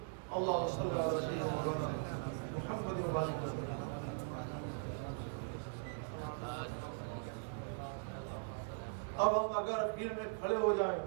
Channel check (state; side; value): silent; left; digital silence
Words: اللہم صلی علی سیدنا مولانا محمد و آلہ وسلم۔ اب ہم اگر اخیر میں کھڑے ہو جائیں،